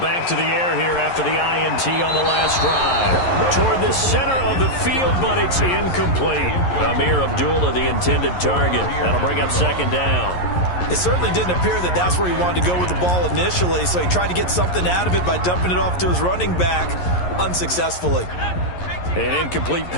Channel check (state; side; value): late; right; 11 ms